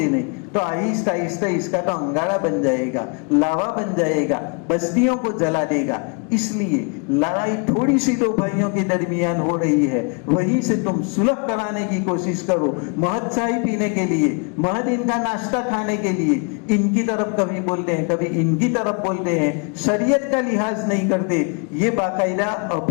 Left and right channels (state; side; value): quieter; right; 36.8 dB